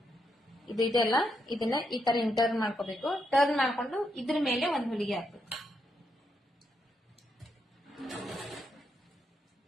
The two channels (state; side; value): normal; both; correlation 0.80